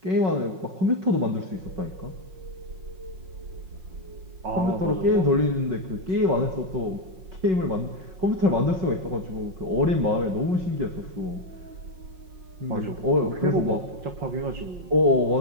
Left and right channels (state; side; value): late; left; 5.4 ms